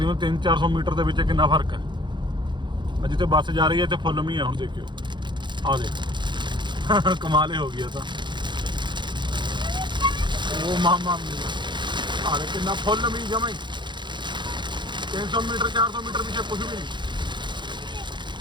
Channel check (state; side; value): late; left; 0.22 ms